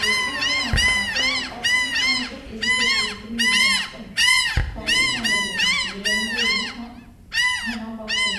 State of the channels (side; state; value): both; identical; correlation 1.00